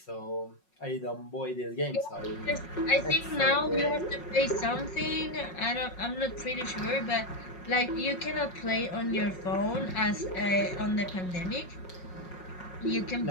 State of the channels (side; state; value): right; late; 5.5 ms